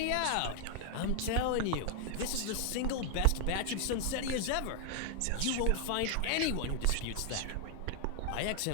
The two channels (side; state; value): both; different; correlation 0.00